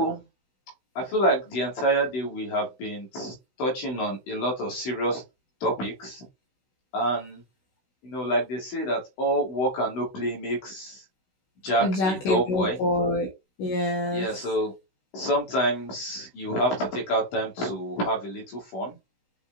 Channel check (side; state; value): right; late; 16 ms